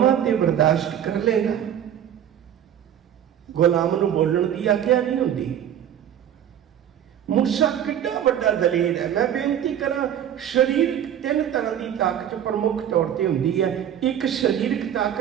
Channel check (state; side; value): quieter; left; 10.0 dB